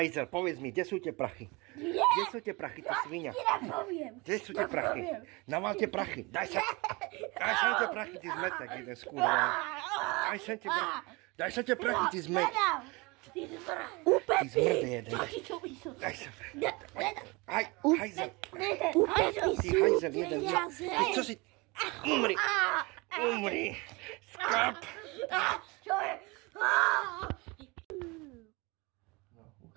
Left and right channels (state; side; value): quieter; left; 25.8 dB